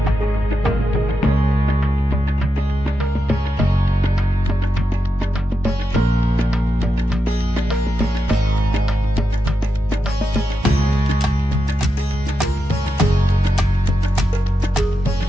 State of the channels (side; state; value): both; normal; correlation 0.87